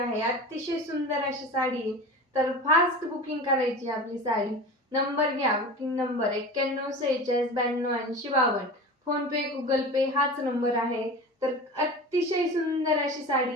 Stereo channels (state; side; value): normal; both; correlation 0.32